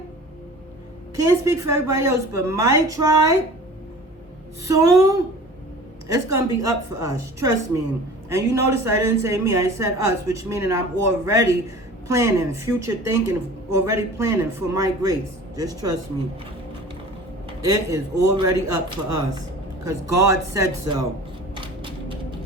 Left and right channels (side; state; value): both; normal; correlation 0.42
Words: can't speak for everybody else, but my tribe, soon, it's going to be up for us. Trust me. And you notice I didn't say me, I said us, which meaning I'm already planning, future thinking, already planning for my grace. Just trust me. It is already up for us, because God said so.